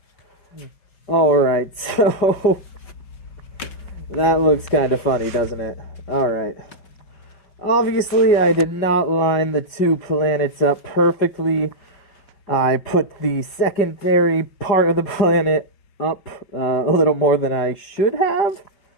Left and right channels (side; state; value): right; late; 5.0 ms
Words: Alright, so that looks kind of funny, doesn't it? Alright. Obviously, I did not line the two planets up perfectly. I put the secondary part of the planet up a little more than I should have.